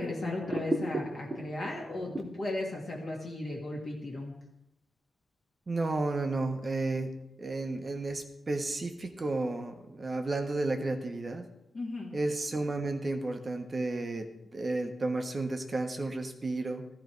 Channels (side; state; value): both; normal; correlation 0.92